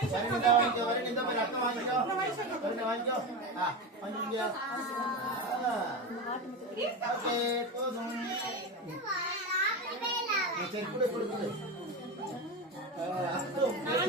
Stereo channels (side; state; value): both; normal; correlation 0.20